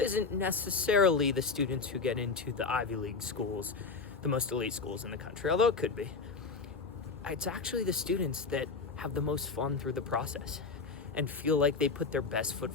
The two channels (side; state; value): right; quieter; 4.5 dB